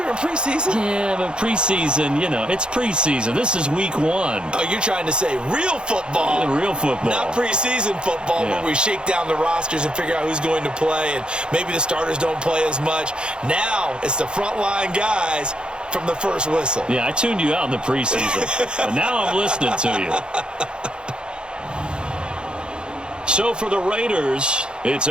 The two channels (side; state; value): left; late; 0.051 ms